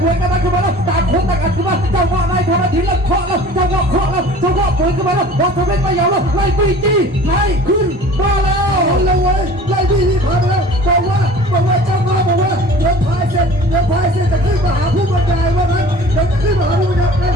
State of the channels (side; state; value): both; normal; correlation 0.44